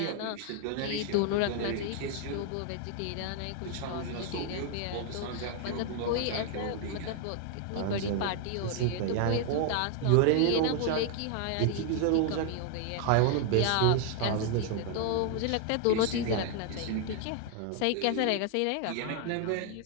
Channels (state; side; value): different; both; correlation 0.00